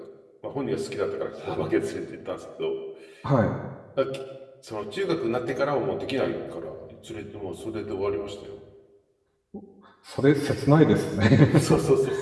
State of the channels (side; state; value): both; identical; correlation 1.00